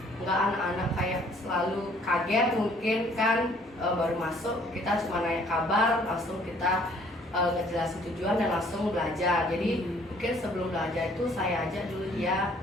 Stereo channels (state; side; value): normal; both; correlation 0.59